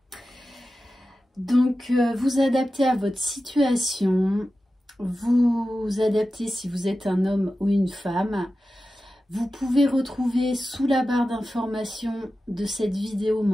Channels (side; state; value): both; normal; correlation 0.93